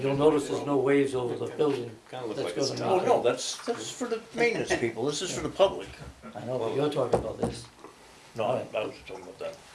notice there's no waves over the building. Kinda look That's like it's gonna Oh, make no, it- that's for the maintenance people, this is for the public. I know, but you're talking about this. No, I was talking about that.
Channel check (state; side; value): identical; both; correlation 1.00